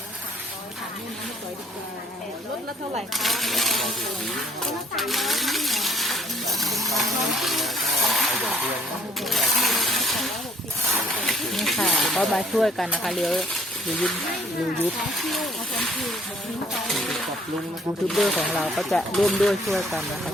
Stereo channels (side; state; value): both; normal; correlation 0.62